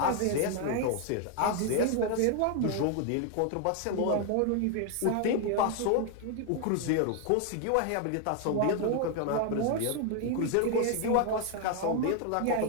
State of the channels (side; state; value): both; different; correlation 0.00